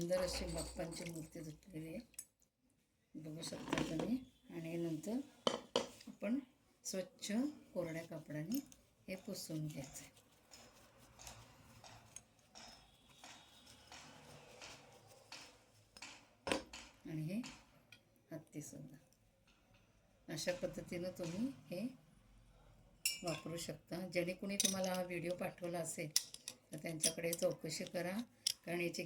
अशी बाप्पांची मूर्ती धुतलेली आहे, बघू शकता तुम्ही. आणि नंतर आपण स्वच्छ कोरड्या कपड्याने हे पुसून घ्यायचं. आणि हे हत्तीसुद्धा अशा पद्धतीनं तुम्ही हे वापरू शकता. ज्याने कुणी तुम्हाला हा व्हिडिओ पाठवला असेल तर त्यांच्याकडे चौकशी करा, कारण याची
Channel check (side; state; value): both; identical; correlation 1.00